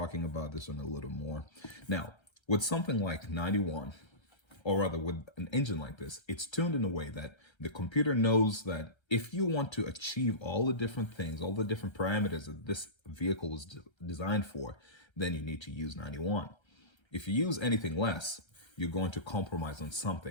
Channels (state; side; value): late; right; 1.3 ms